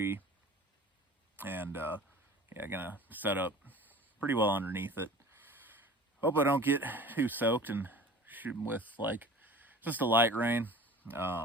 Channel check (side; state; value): both; normal; correlation 0.41